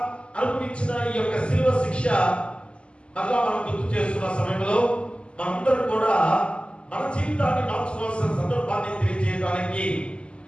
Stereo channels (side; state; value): right; late; 0.053 ms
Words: అనుభవించిన ఈ యొక్క శిలువ శిక్ష మళ్ళా మనం గుర్తు చేస్తున్న సమయంలో మనందరం కూడా మన జీవితాన్ని మార్చుకోవాల్సిన సందర్భాన్ని తెలియజేయడానికి